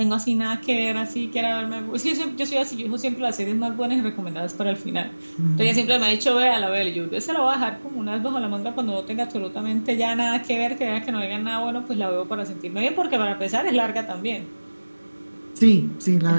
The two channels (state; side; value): inverted; both; correlation -1.00